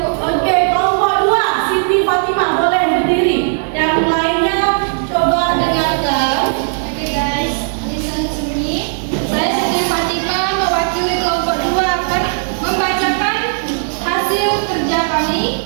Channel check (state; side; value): silent; left; 61 dB below the other